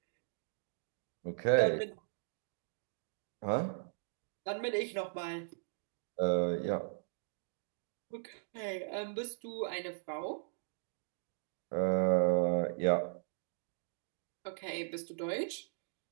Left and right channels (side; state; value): left; silent; digital silence